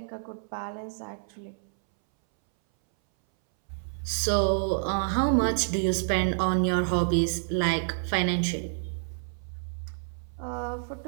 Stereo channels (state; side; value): silent; left; 59 dB below the other